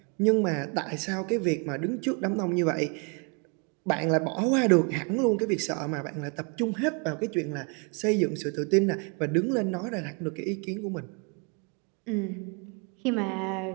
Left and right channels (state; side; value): quieter; left; 34.4 dB